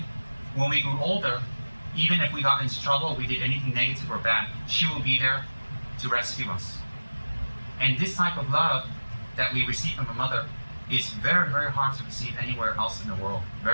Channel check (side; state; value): both; inverted; correlation -1.00